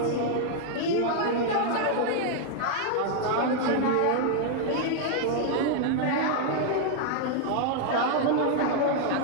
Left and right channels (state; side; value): different; both; correlation 0.00